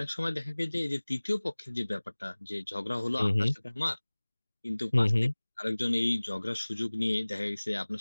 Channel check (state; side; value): inverted; both; correlation -1.00